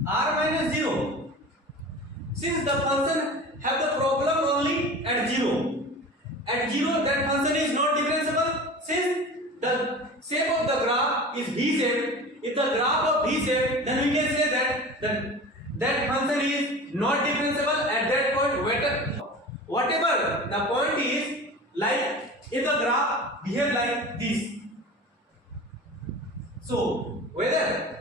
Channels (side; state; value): both; normal; correlation 0.36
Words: r minus 0. Since the function have the problem only at 0. At 0 that function is not differentiable. Since the shape of the graph is V shape, if the graph of V shape, then we can say that function is not differentiable at that point. Whatever the point is, like if the graph behave like this. So